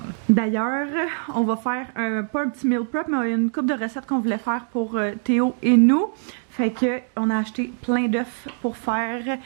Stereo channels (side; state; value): left; silent; digital silence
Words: D'ailleurs, on va faire pas un petit meal prep, mais une couple de recettes qu'on voulait faire pour Théo et nous. Fait que on a acheté plein d'œufs pour faire